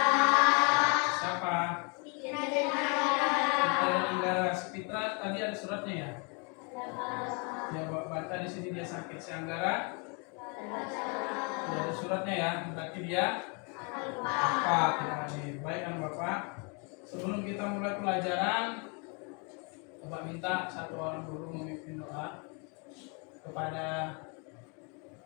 Siapa? Fitra dan Anggara. Fitra tadi ada suratnya ya? Ya, baca di sini dia sakit. Si Anggara tidak ada suratnya ya, berarti dia apa tidak hadir. Baik anak Bapak, sebelum kita mulai pelajaran, Bapak minta satu orang dulu memimpin doa kepada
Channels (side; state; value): right; quieter; 34.9 dB